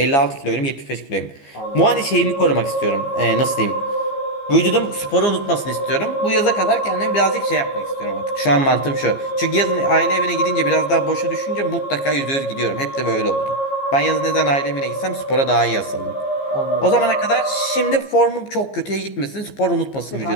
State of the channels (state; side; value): late; right; 15 ms